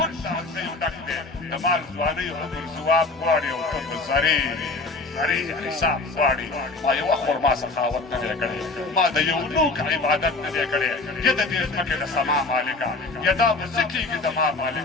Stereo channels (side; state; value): right; quieter; 3.4 dB